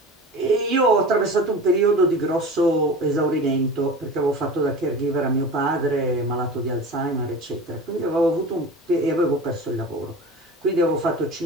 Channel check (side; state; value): both; normal; correlation 0.35